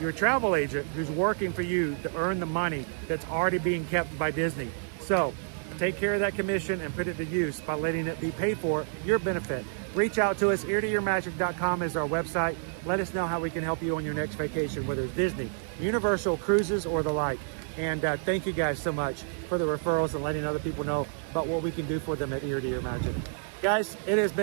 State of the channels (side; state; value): left; silent; digital silence